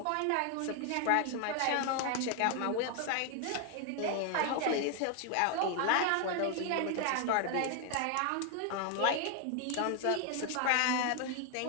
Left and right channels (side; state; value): both; different; correlation 0.00